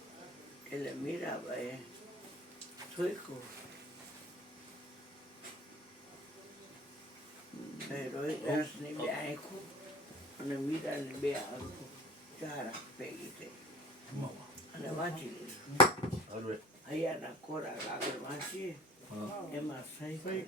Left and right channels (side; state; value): both; normal; correlation 0.44